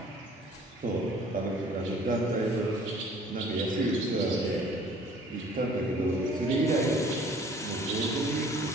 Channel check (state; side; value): normal; both; correlation 0.53